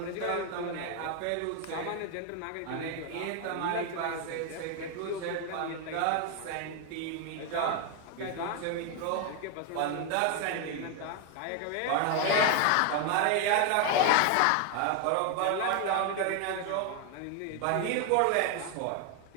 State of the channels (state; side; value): different; both; correlation 0.01